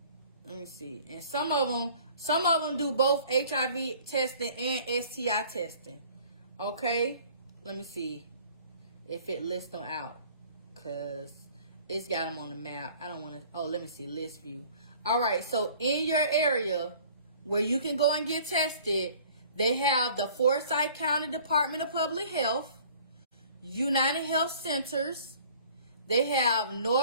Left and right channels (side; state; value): both; inverted; correlation -0.52